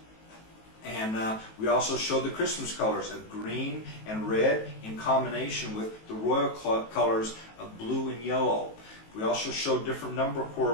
And we also showed the Christmas colors of green and red in combination with the royal colors of blue and yellow. We also showed different number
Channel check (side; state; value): right; late; 18 ms